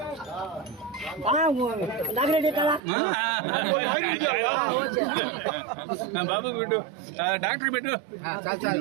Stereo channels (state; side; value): drops out; left; at 2.8 s